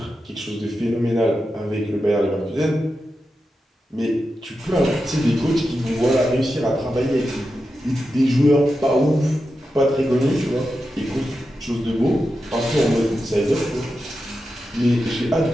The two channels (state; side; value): normal; both; correlation 0.89